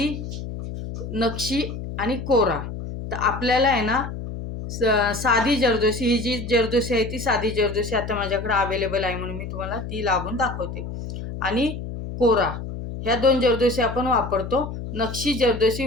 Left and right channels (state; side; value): noise; left; hum, 8 dB below the sound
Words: नक्षी आणि कोरा. तर आपल्याला आहे ना साधी जरदोसी, ही जी जरदोसी आहे ती साधी जरदोसी आता माझ्याकडे अवेलेबल आहे म्हणून मी तुम्हाला ती लावून दाखवते. आणि कोरा, ह्या 2 जरदोसी आपण वापरतो, नक्षी जरदोसी